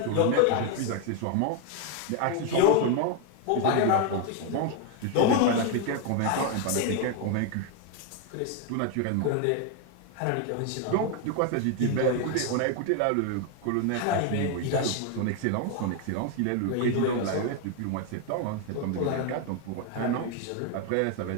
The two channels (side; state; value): both; different; correlation 0.01